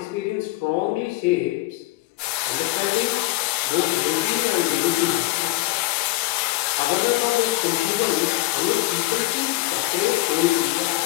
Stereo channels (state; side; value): quieter; right; 19.5 dB